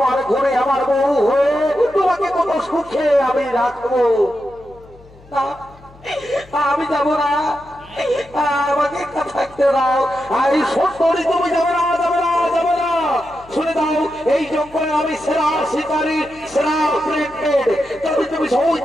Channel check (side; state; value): left; noise; hum, 24 dB below the sound